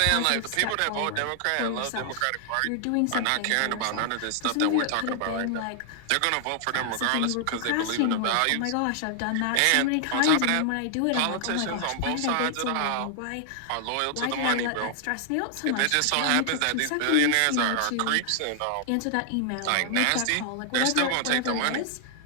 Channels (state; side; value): different; both; correlation 0.00